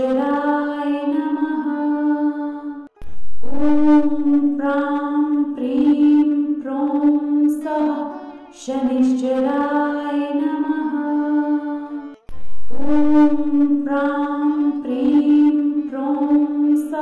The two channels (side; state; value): both; identical; correlation 1.00